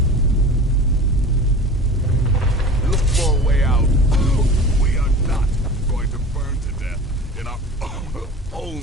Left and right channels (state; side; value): normal; both; correlation 0.38